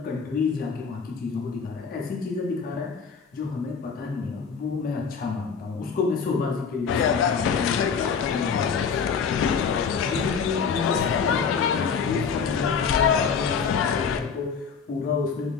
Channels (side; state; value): right; quieter; 6.0 dB